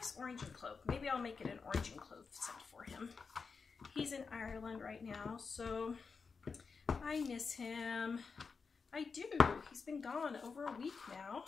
orange and clove. Maybe I'll make it an orange and clove scent for him. He's in Ireland right now, so I miss him. I do. He's been gone over a week now.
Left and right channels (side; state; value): right; quieter; 5.1 dB